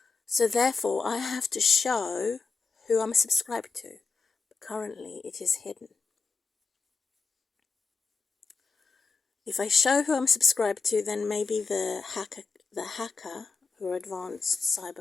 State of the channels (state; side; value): quieter; right; 4.6 dB